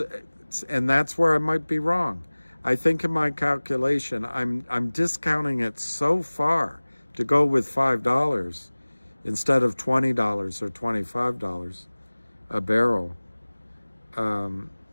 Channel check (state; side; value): inverted; both; correlation -1.00